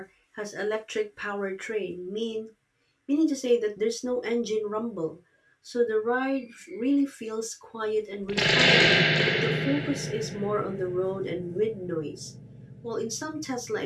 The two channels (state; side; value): identical; both; correlation 1.00